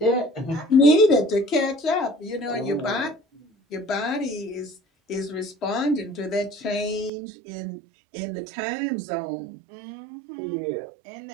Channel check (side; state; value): left; drops out; at 7.1 s